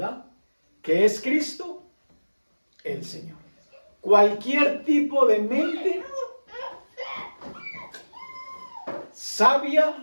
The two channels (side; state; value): both; inverted; correlation -1.00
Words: Que es Cristo el Señor. Cualquier tipo de mente